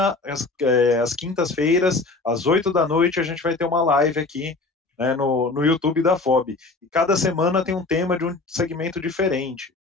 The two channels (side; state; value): right; quieter; 3.5 dB